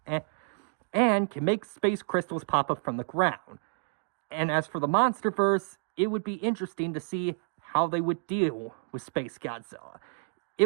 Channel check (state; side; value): silent; left; digital silence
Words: and can make space crystals pop up from the ground. And as for the Monsterverse, it would be interesting to see how they would deal with Space Godzilla. It